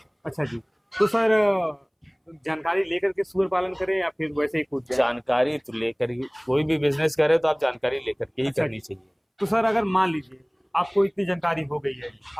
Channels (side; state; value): both; identical; correlation 1.00